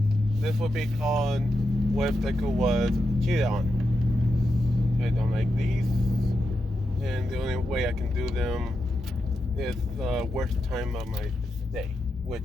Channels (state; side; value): normal; both; correlation 0.87